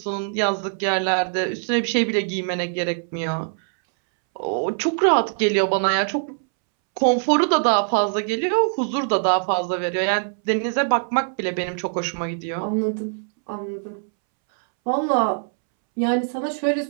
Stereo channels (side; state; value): left; silent; 64 dB below the other